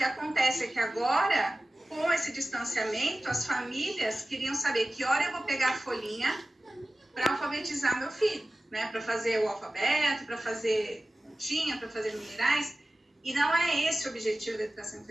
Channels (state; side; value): normal; both; correlation 0.96